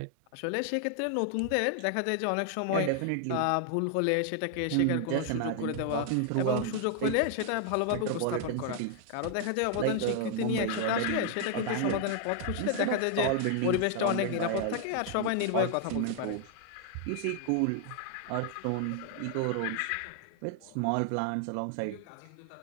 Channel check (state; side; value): different; both; correlation 0.00